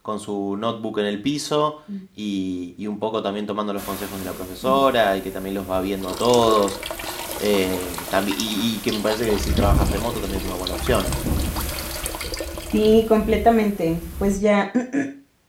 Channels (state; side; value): identical; both; correlation 1.00